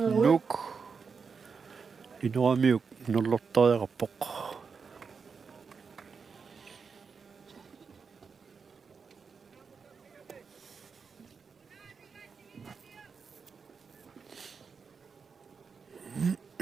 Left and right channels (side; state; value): left; quieter; 5.5 dB